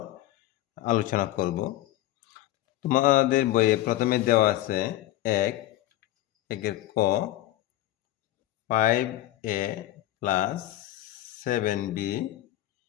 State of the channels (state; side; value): quieter; right; 15.1 dB